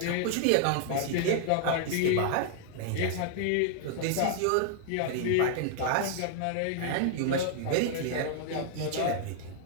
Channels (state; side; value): different; both; correlation 0.00